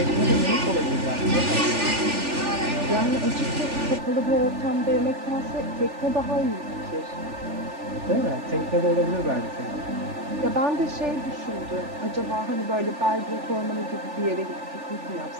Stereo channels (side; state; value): left; late; 3.4 ms